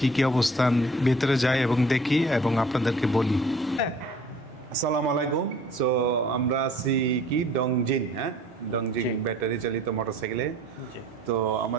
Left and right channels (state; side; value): normal; both; correlation 0.52